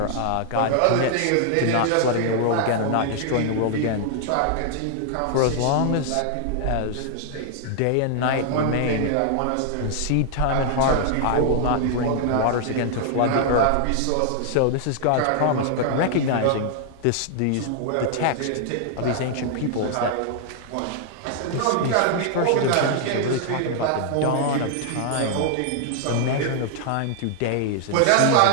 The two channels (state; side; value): different; both; correlation 0.00